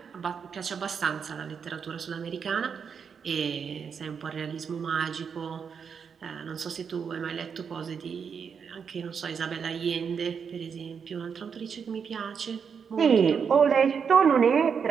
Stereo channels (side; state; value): left; quieter; 6.6 dB